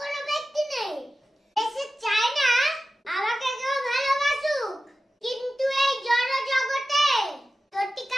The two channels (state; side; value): normal; both; correlation 0.94